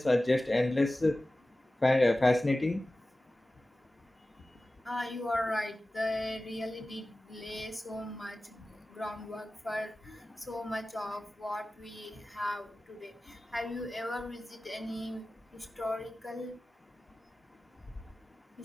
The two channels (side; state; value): both; normal; correlation 0.96